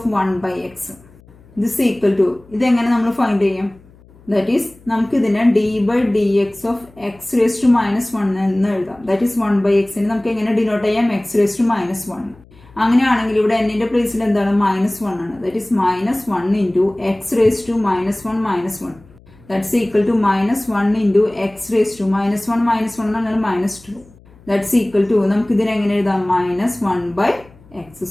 1 by x. This equal to, ഇതെങ്ങനെ നമ്മൾ ഫൈൻഡ് ചെയ്യും, ദാറ്റ് ഈസ് നമുക്ക് ഇതിനെ d by D X of X raise to minus 1 എന്ന് എഴുതാം. ദാറ്റ് ഈസ് 1 ബൈ എക്സിന് നമുക്ക് എങ്ങനെ ഡിനോട്ട് ചെയ്യാം, എക്സ് റേസ് ടു മൈനസ് 1. അങ്ങനെയാണെങ്കിൽ ഇവിടെ എന്നിന്റെ പ്ലേസിൽ എന്താണ്, -1 ആണ്. That is -1 into X raise to -1 -1. That's equal to -1 into x raised to -1 എന്ന് പറഞ്ഞാൽ -2. That's equal to, നമുക്ക് ഇതിനെ എങ്ങനെ എഴുതാം, -1 by x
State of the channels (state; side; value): noise; left; hum, 26 dB below the sound